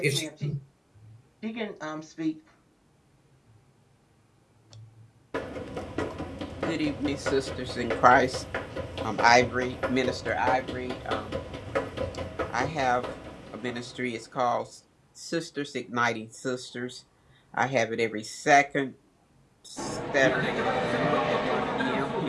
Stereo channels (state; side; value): identical; both; correlation 1.00